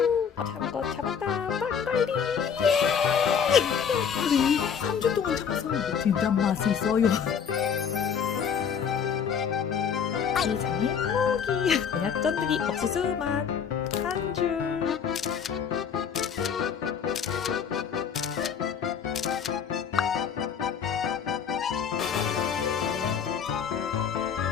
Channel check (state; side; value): quieter; right; 7.2 dB